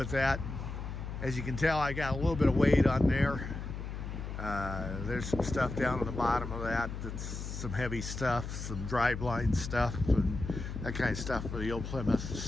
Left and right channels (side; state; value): left; noise; hum, 7 dB below the sound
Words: that. As you can tell, I got a little bit of weight on there. There's some stuff down on the bottom of that that's some heavy stuff, some driveline stuff, and that kind of stuff for the old Plymouth.